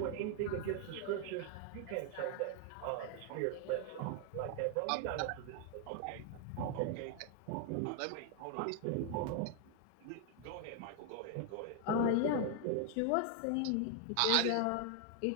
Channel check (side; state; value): both; different; correlation 0.00